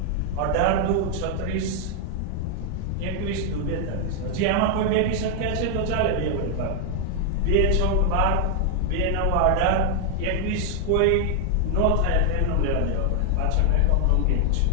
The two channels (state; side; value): different; both; correlation 0.00